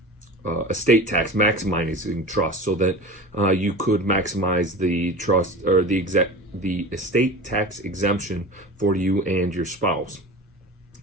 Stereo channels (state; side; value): normal; both; correlation 0.34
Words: estate tax maximizing trust, so that you could maximize the trust, or the estate tax exemption for you and your spouse.